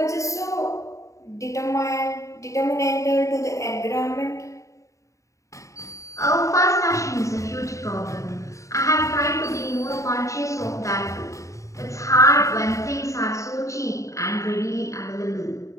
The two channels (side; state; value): right; late; 0.15 ms